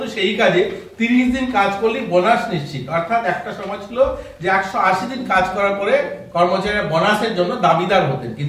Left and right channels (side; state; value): both; identical; correlation 1.00